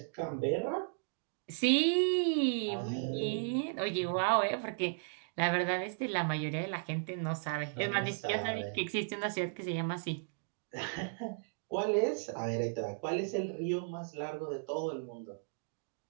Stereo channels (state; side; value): silent; left; digital silence